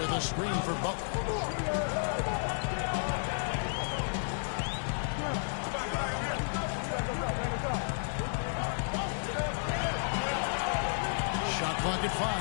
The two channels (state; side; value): silent; right; digital silence